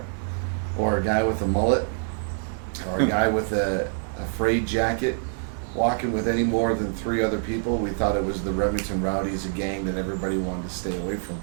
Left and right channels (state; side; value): silent; left; digital silence